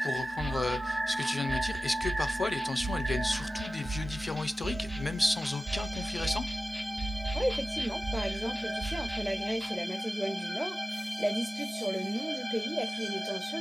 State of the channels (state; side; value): normal; both; correlation 0.95